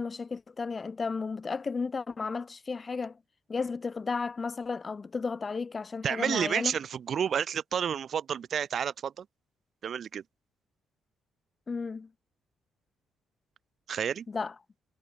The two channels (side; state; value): both; normal; correlation 0.80